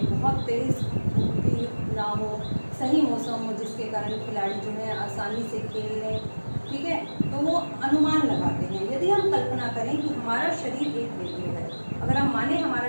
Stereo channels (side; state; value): both; inverted; correlation -1.00